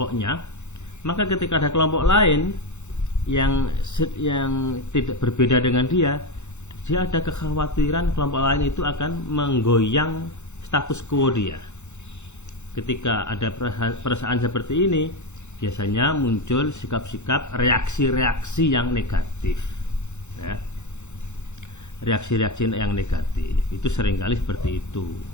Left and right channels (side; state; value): right; late; 0.83 ms